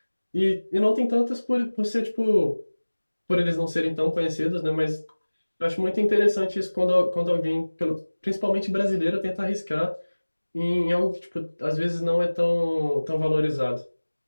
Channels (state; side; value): inverted; both; correlation -1.00